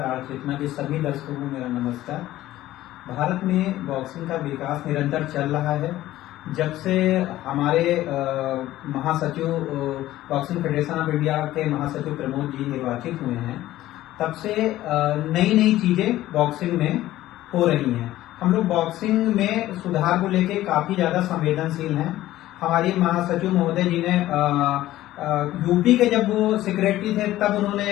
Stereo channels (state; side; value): quieter; right; 15.0 dB